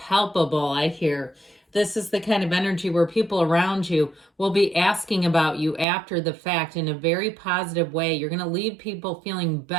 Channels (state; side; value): drops out; left; at 5.9 s